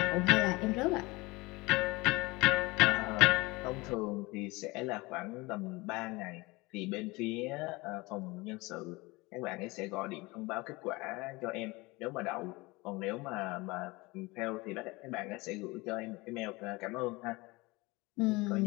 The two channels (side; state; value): right; quieter; 23.3 dB